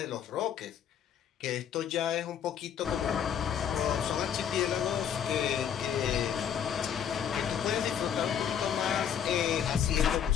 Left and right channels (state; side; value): quieter; right; 8.7 dB